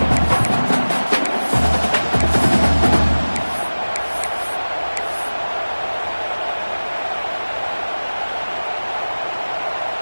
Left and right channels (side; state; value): both; inverted; correlation -1.00